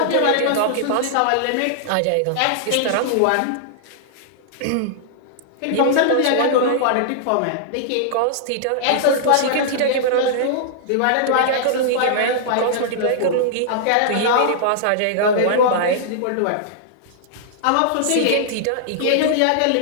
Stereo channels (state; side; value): different; both; correlation -0.01